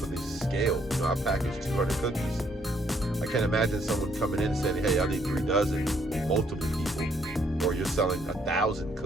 the scale. You know, I package 200 cookies. I can't imagine someone coming in and saying, hey, I need 3 dozen, multiple people. Or you're selling 1,000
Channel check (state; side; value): normal; both; correlation 0.69